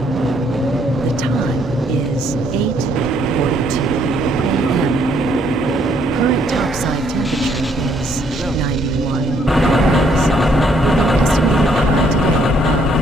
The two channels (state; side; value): normal; both; correlation 0.68